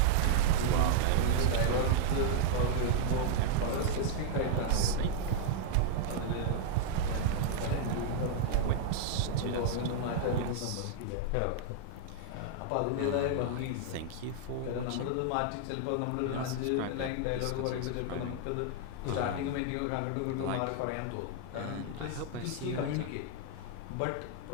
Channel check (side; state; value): both; different; correlation -0.01